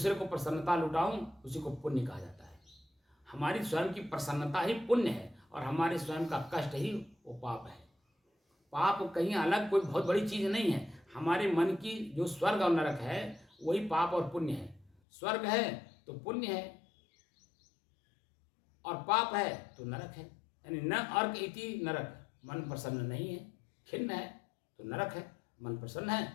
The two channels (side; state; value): right; drops out; at 15.0 s